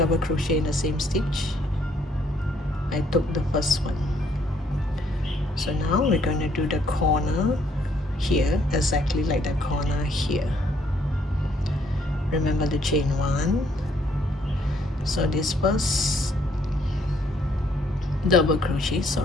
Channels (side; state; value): both; normal; correlation 0.68